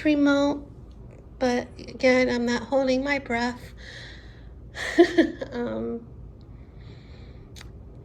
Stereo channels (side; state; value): both; identical; correlation 1.00